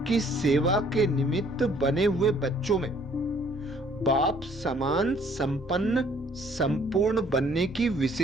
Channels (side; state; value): both; normal; correlation 0.60